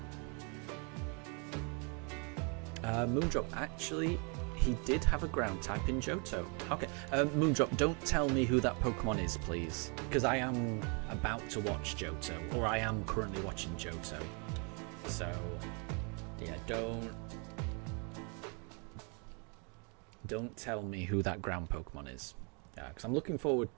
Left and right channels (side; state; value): left; quieter; 35.4 dB